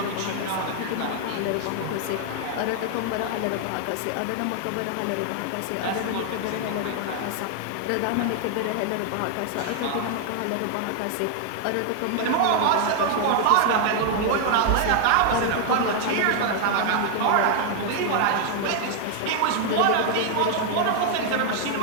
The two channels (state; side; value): different; both; correlation 0.00